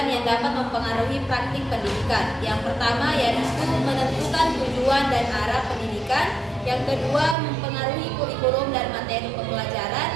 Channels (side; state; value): left; drops out; at 7.4 s